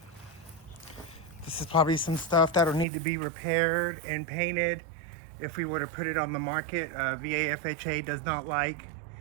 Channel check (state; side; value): drops out; left; at 2.9 s